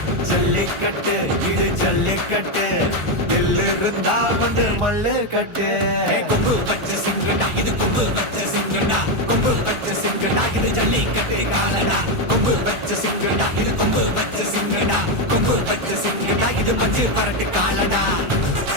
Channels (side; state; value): left; late; 1.4 ms